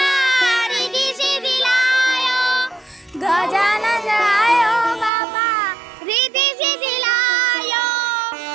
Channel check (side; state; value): left; drops out; at 5.1 s